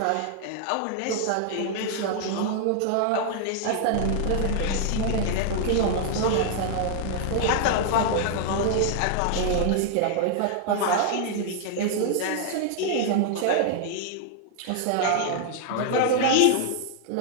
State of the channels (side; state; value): both; different; correlation 0.00